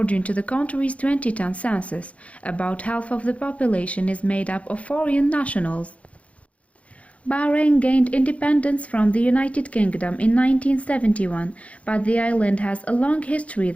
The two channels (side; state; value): right; late; 0.065 ms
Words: to the country's 2010 census, about half of the population is made up of foreign nationals. Bahrain gained independence from the United Kingdom in 1971, but the island has a long history